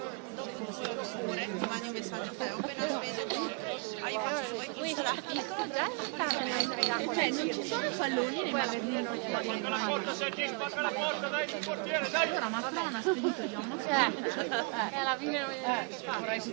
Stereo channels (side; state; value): left; quieter; 33.3 dB